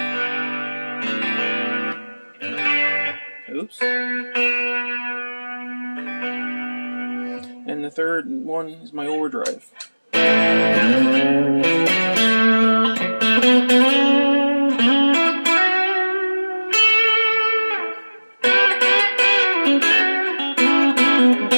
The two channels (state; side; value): inverted; both; correlation -1.00